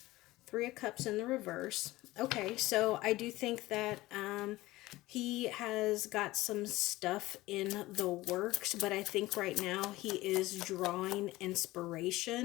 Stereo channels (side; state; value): right; quieter; 18.4 dB